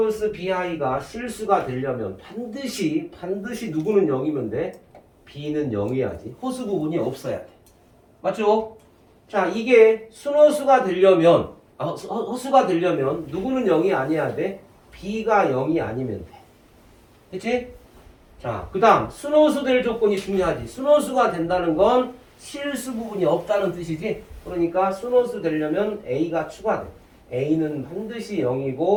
BI가 실수가 되려면 반드시 누구는 0이면 돼? B는 0이야지. 허수 부분이 없어야 돼. 맞죠? 자, 이게 순허수가 되려면 허수가 되려면 누구는 0이 아니어야 돼? B가 0이 아니면 돼. 그치? 자, 그 다음 순허수 될 조건이 중요하지. 순허수가 된다는 건 실수 부분이 없다는 뜻이지. 그러니까 순허수 되려면 A가 추가돼. A는 반드시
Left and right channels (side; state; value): both; identical; correlation 1.00